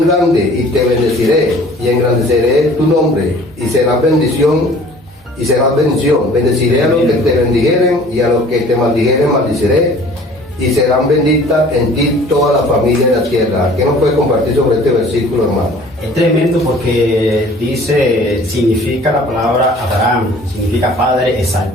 grande y te bendeciré y engrandeceré tu nombre y serás bendición y serás bendición. Bendeciré a los que te bendijeren y a los que te maldijeren maldiciré y serán benditas en ti toda la familia de la tierra. ¿Qué nos puede compartir sobre este versículo, hermano? Es tremendo porque significa la palabra Abraham, significa padre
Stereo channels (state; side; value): normal; both; correlation 0.50